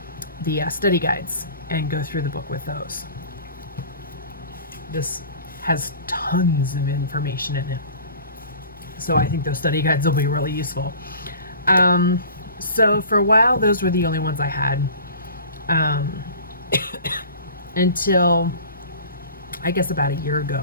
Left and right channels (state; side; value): inverted; both; correlation -0.42